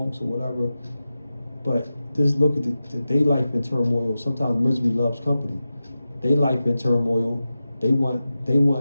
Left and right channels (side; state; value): both; inverted; correlation -0.93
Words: or whatever. But just look at their life in turmoil. Sometimes misery loves company. Their life in turmoil. They want